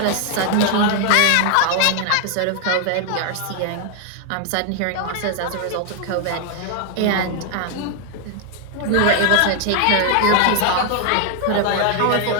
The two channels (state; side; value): different; both; correlation 0.00